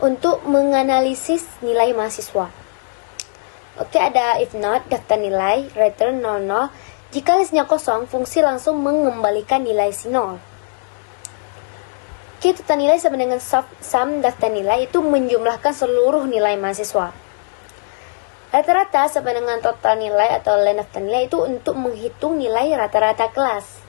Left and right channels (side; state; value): right; silent; digital silence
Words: untuk menganalisis nilai mahasiswa. Oke, ada if not daftar nilai return 00. Jika listnya kosong, fungsi langsung mengembalikan nilai si 0. Oke, total nilai sama dengan sum daftar nilai itu menjumlahkan seluruh nilai mahasiswa. Rata-rata sama dengan total nilai atau len daftar nilai itu untuk menghitung nilai rata-rata kelas.